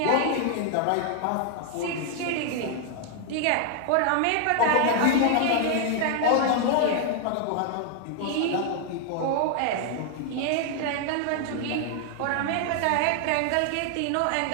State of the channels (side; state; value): both; different; correlation 0.00